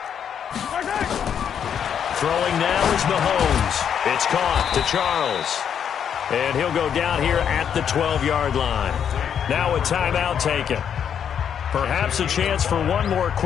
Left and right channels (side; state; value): right; quieter; 8.3 dB